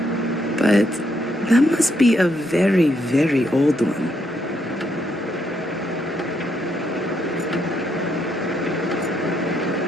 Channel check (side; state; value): both; normal; correlation 0.76